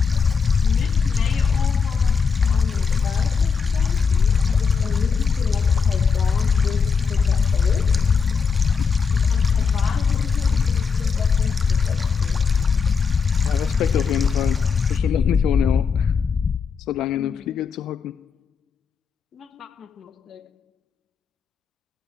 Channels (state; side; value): quieter; right; 5.8 dB